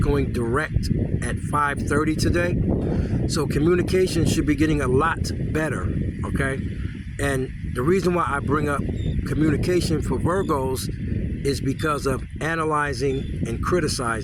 direct at 5:30 today. So communication should be getting a lot better, okay? And the reason why I bring up communication for Virgos is because of analyzing and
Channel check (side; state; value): both; identical; correlation 1.00